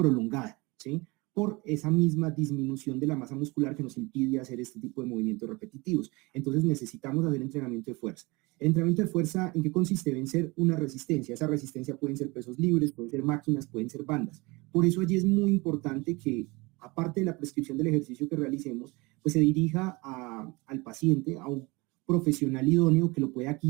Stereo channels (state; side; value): quieter; left; 24.8 dB